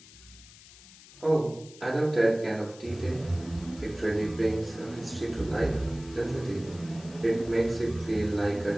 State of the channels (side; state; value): left; noise; hiss, 20 dB below the sound